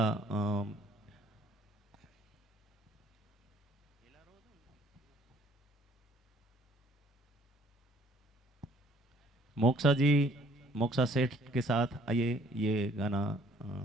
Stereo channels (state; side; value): normal; both; correlation 0.59